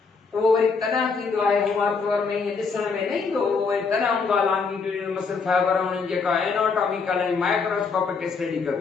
उहो वरी तना थींदो आहे, हुआ तौर में ईअं ॾिसण में न ईंदो, उहो वरी तना हूंदो आहे longitudinal muscle fiber। उन्हनि जेका एनाटॉमिकल ऐं माइक्रोस्कोपिक स्टडी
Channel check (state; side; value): quieter; right; 4.9 dB